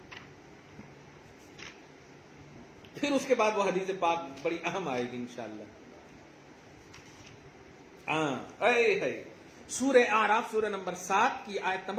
پھر اس کے بعد وہ حدیث پاک بڑی اہم آئے گی انشاءاللہ. سورہ اعراف سورہ نمبر 7 کی آیت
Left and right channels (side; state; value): both; identical; correlation 1.00